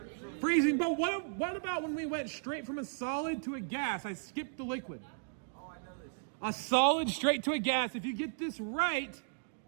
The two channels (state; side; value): silent; left; digital silence